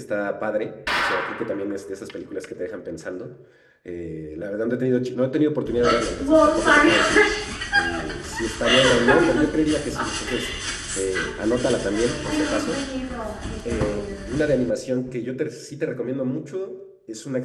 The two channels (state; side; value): identical; both; correlation 1.00